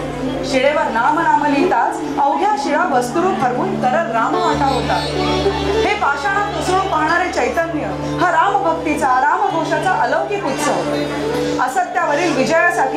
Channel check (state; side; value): identical; both; correlation 1.00